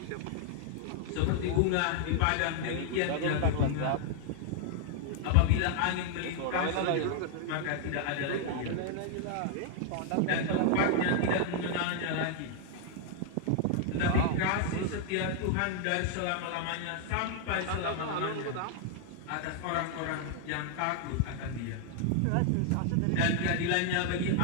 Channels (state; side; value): different; both; correlation 0.00